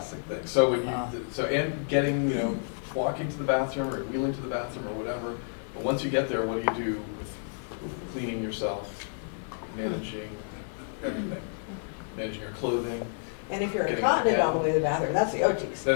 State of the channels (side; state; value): right; silent; 55 dB below the other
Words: things. So when you, and getting, walking to the bathroom or wheeling to the bathroom or whatever, but once you get there, what do you do with cleaning yourself, managing everything, managing your clothing? And if you're incontinent on the way to the bathroom, that's the OT stuff.